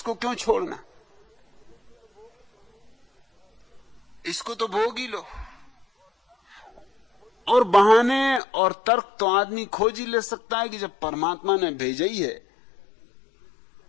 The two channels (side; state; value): right; drops out; at 8.4 s